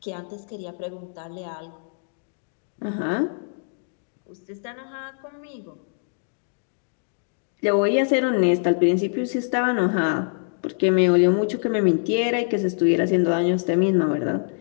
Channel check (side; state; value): right; silent; digital silence